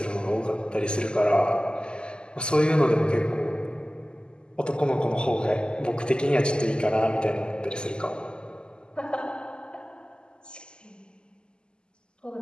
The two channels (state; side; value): late; right; 0.047 ms